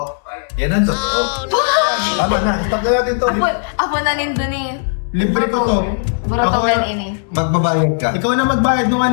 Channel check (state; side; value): silent; right; digital silence